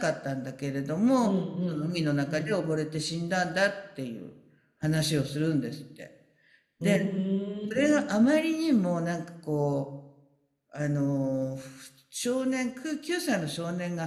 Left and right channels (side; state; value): both; identical; correlation 1.00